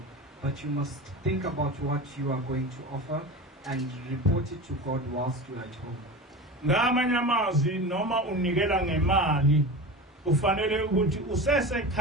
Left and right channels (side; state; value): both; normal; correlation 0.29